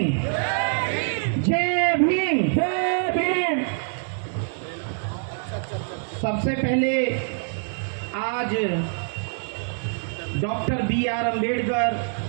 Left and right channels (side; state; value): left; silent; digital silence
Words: जय भीम, जय भीम। सबसे पहले आज डॉक्टर बी.आर. अम्बेडकर